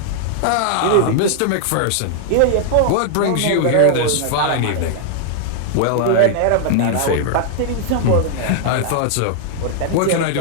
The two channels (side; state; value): both; different; correlation -0.01